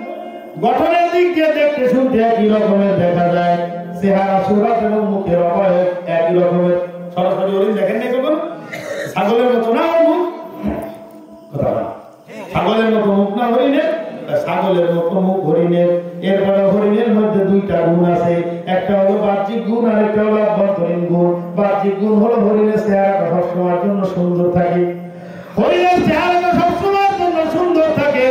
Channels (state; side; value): identical; both; correlation 1.00